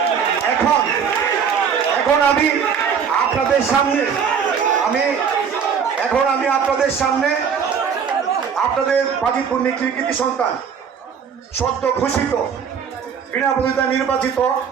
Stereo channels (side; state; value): left; quieter; 6.9 dB